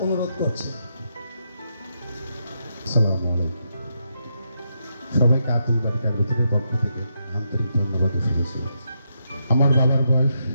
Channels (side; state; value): both; inverted; correlation -0.82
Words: অনুরোধ করছি। আসসালামু আলাইকুম। সবাইকে আব্দুল বারী কাগজের পক্ষ থেকে আন্তরিক ধন্যবাদ ও শুভেচ্ছা। আমার বাবার বয়স